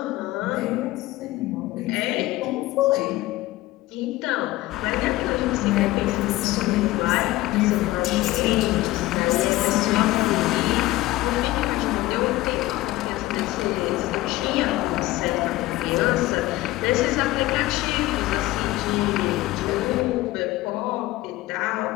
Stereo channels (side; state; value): right; quieter; 17.5 dB